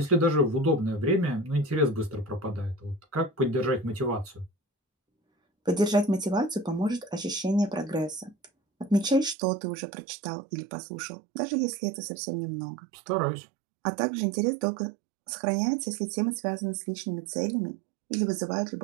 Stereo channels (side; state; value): left; drops out; at 9.3 s